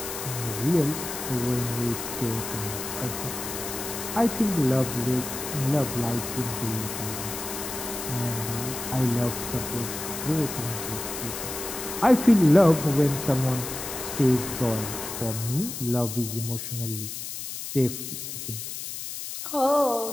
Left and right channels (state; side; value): noise; left; hiss, 7 dB below the sound